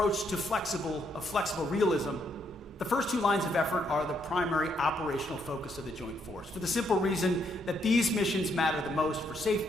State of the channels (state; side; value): normal; both; correlation 0.74